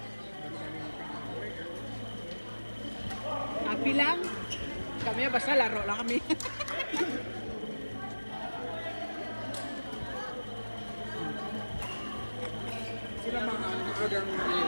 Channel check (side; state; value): both; inverted; correlation -1.00